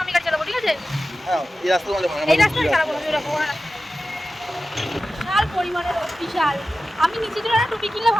আমি গাড়ি চালাবো, ঠিক আছে? এই রাস্তায় চালাবো না, বিশাল পরিমাণে রোদ, বিশাল। আমি নিচে চলে টুপি কিনলে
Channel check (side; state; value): both; normal; correlation 0.94